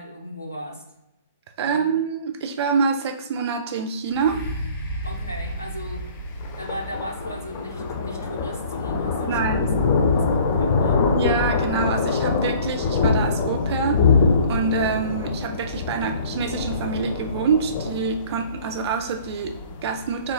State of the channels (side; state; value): both; inverted; correlation -0.49